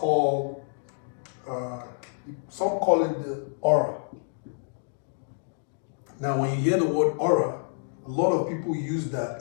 some call it the aura. Now when you hear the word aura, a lot of people use that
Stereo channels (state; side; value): silent; right; digital silence